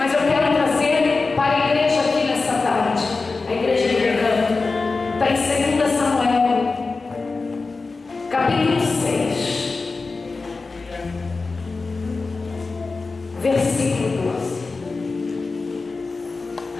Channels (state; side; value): quieter; right; 4.0 dB